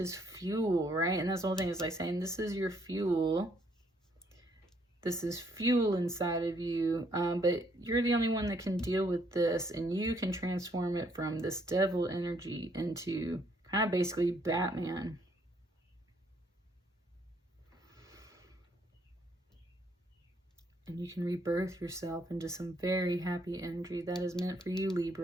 fuel, right? And that's the whole thing, is like saying, this is your fuel. This is fuel inside of you, but you're the only one that can deal with this, and you can transform it from this Devil energy into kind of basically Batman. And you can rebirth yourself into some very happy energy that is meant for you,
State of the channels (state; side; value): normal; both; correlation 0.68